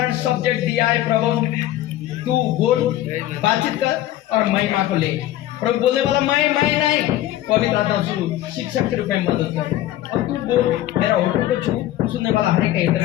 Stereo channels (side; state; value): right; quieter; 14.0 dB